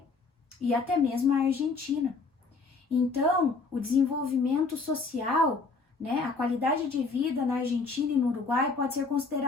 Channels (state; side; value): quieter; right; 4.1 dB